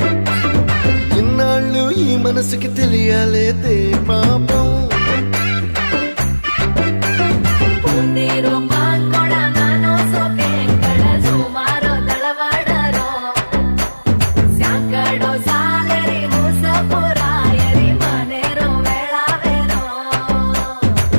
ఇన్నాళ్ళు ఈ మనసుకి తెలియాలేదే పాపం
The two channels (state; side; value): inverted; both; correlation -1.00